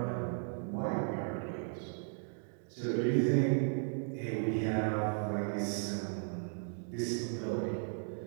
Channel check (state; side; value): silent; left; 54 dB below the other